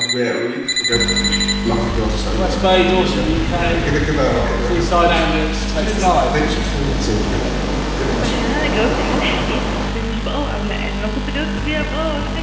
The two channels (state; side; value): identical; both; correlation 1.00